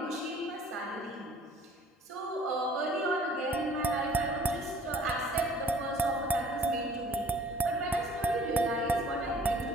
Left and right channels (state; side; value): normal; both; correlation 0.54